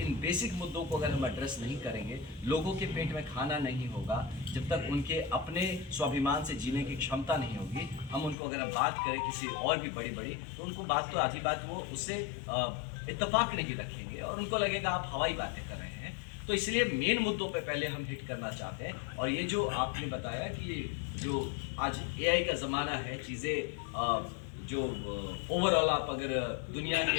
बेसिक मुद्दों को अगर हम एड्रेस नहीं करेंगे, लोगों के पेट में खाना नहीं होगा, जब तक उनके अपने स्वाभिमान से जीने की क्षमता नहीं होगी, हम उनको अगर हम बात करें किसी और भी बड़ी तो उनको बात तो आधी बात वो उससे इत्तेफाक नहीं रखेंगे और उनको लगेगा आप हवाई बातें कर रहे हैं। तो इसलिए मेन मुद्दों पे पहले हम हिट करना चाहते हैं। और ये जो आपने बताया कि जो आज AI का ज़माना है, चीज़ें जो ओवरऑल आप अगर दुनिया के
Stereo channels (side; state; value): right; drops out; at 8.3 s